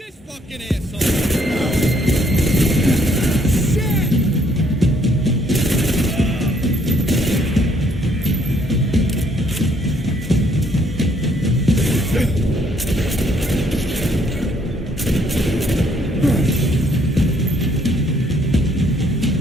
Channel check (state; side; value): normal; both; correlation 0.67